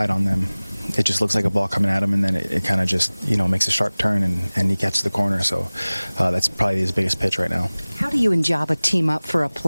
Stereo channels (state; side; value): inverted; both; correlation -0.99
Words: on them, it just looks like a ball coming at him, and then it kind of just, makes a sharp turn, and he catches the corner. So that's probably his biggest pitch right now. How do you and Jabba team up for a